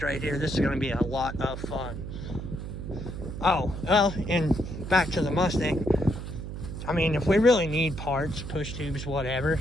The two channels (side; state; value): right; noise; hum, 7 dB below the sound